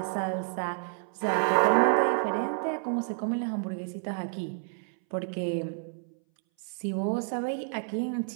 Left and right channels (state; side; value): silent; left; 58 dB below the other